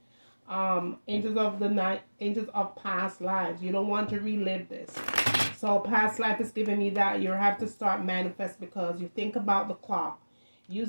Angels of the night, angels of past lives. You don't want to relive this. So past life is giving me that you have to start manifest, because you think about the clock.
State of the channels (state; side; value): inverted; both; correlation -1.00